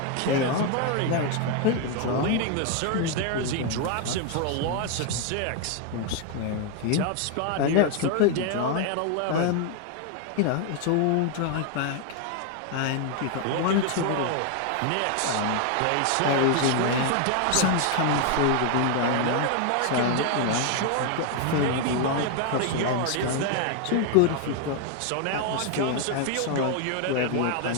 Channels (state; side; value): different; both; correlation 0.00